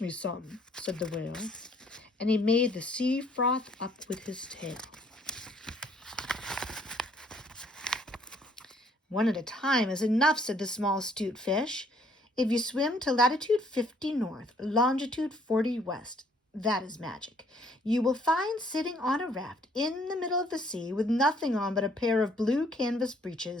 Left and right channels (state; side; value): normal; both; correlation 0.63